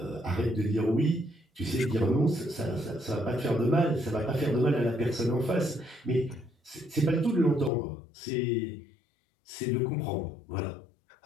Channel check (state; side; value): drops out; right; at 7.7 s